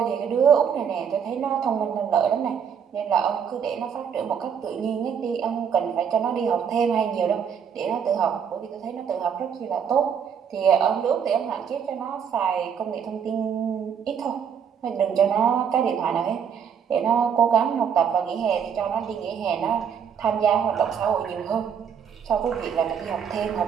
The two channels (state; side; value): quieter; left; 7.5 dB